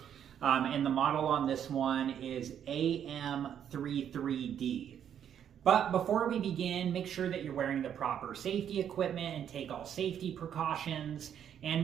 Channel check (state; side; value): quieter; left; 9.2 dB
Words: And the model on this one is AM33D. But before we begin, make sure that you're wearing the proper safety equipment and take all safety precautions. And